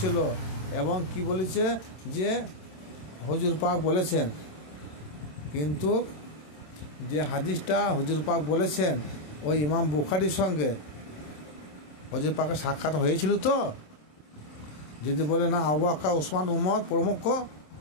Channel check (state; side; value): late; right; 27 ms